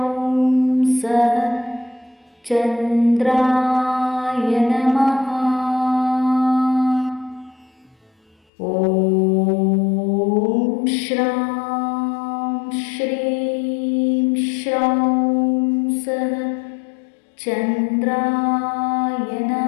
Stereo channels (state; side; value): drops out; right; at 8.3 s